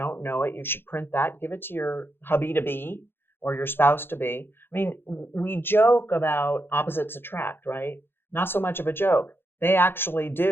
know it, you should print that, give it to your hubby to be or your spouse to be. I mean, we joke about opposites attract, right? Not so much of a joke. They actually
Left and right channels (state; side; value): late; right; 0.10 ms